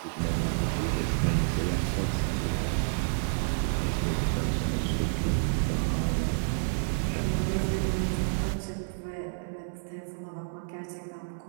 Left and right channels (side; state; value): left; silent; 58 dB below the other